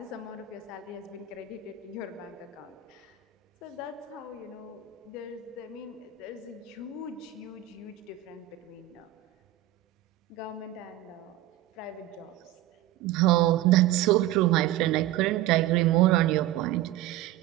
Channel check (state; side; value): quieter; left; 13.3 dB